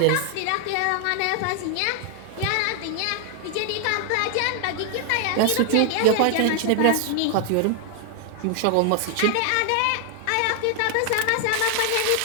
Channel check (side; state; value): both; different; correlation 0.00